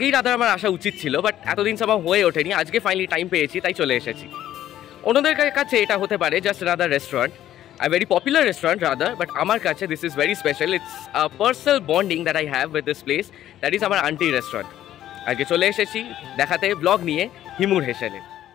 রাদার আমার আসা উচিত ছিল, বাট এতদিন সব হয়ে ওঠেনি। আজকে ফাইনালি টাইম পেয়েছি, তাই চলে এসেছি। অন্যদের কাছে এটা হতে পারে just rather restaurant, a very popular restaurant rather, but আমার কাছে this is very special. It's a personal bonding that I have with this place, that is আমার Auntie Restaurant. আজকে চলে এসেছি দেখাতে ব্লগ নিয়ে হিমুর হেসেলে।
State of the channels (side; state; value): right; quieter; 12.3 dB